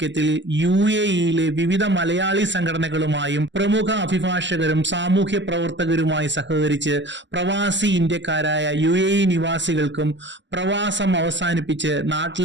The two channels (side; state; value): left; late; 0.53 ms